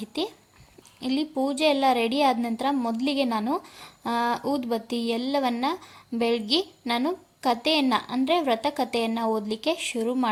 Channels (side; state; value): both; identical; correlation 1.00